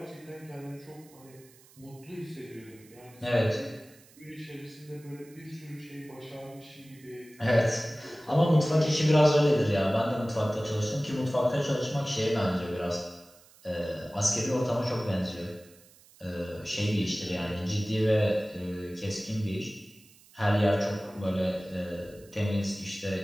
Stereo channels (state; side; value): noise; right; hiss, 26 dB below the sound